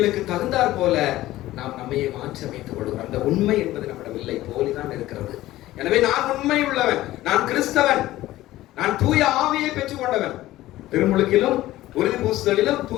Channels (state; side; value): quieter; right; 15.9 dB